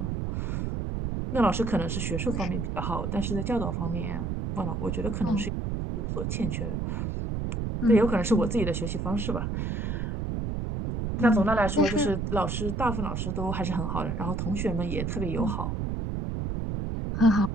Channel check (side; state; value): right; noise; rumble, 2 dB below the sound